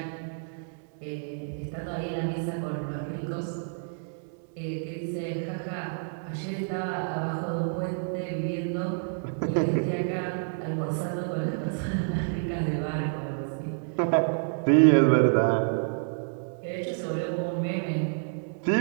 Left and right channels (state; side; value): silent; left; digital silence